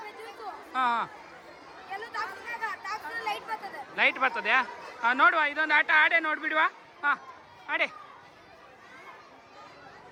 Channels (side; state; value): both; identical; correlation 1.00